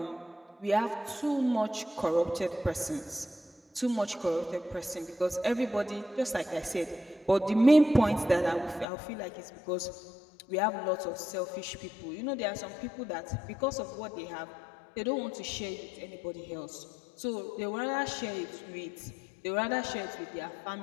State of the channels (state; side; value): drops out; right; at 8.8 s